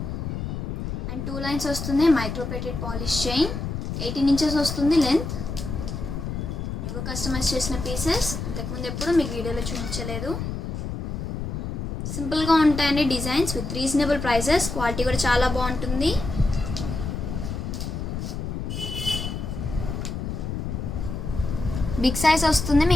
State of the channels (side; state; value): left; noise; rumble, 4 dB below the sound